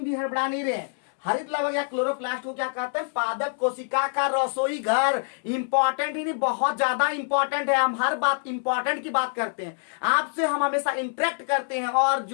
हड़बड़ा नहीं रहे। हरित लवक या क्लोरोप्लास्ट को क्या कहते हैं, पादप कोशिका का रसोई घर। इंपॉर्टेंट ही नहीं, बहुत ज्यादा इंपॉर्टेंट है। हम हर बात इंपॉर्टेंट की बात करते हैं, आपसे हम हमेशा इंटरेक्ट करते हैं, और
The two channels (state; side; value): silent; right; digital silence